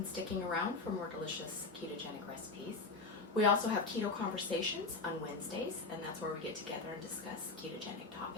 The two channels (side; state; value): right; quieter; 3.8 dB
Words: sticking around for more delicious ketogenic recipes. We also have keto conversations on Wednesdays, and that's where we get together and discuss ketogenic